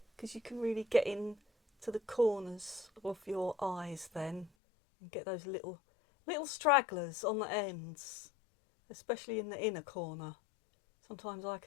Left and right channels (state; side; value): drops out; right; at 4.5 s